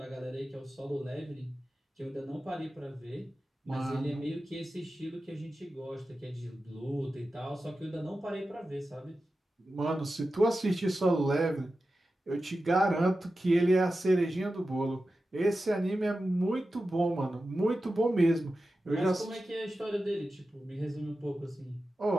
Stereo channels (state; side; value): normal; both; correlation 0.93